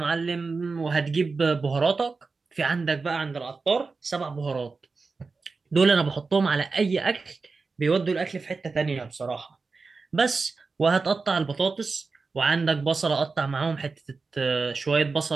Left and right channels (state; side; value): quieter; left; 4.3 dB